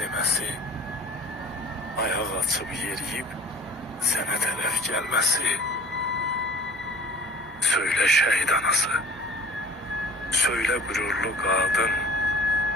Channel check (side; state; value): both; normal; correlation 0.47